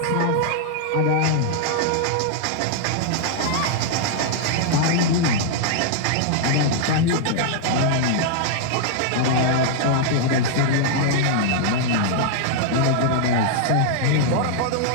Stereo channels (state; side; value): different; both; correlation -0.01